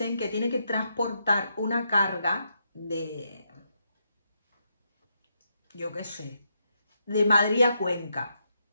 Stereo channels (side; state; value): both; inverted; correlation -0.81